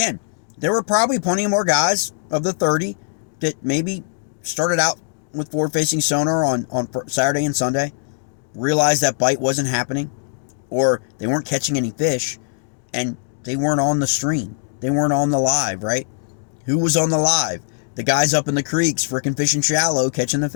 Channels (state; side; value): silent; right; digital silence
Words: there were probably plenty more guys of the 30 that maybe started out with forward-facing sonar on Saturday and Sunday, realized that bite wasn't happening, or they weren't catching any fish, and they weren't on the stream. They weren't on the live, right? Who was on the live? The guys up in the creeks freaking fishing shallow, catching the